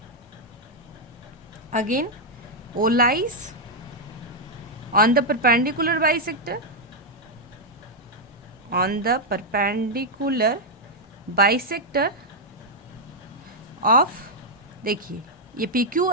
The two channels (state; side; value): normal; both; correlation -0.02